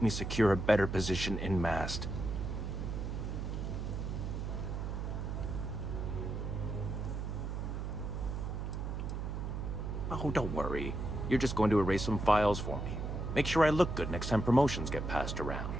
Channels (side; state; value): right; noise; hum, 3 dB below the sound